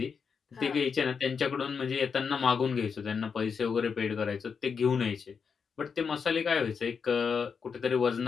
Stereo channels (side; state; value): right; quieter; 6.0 dB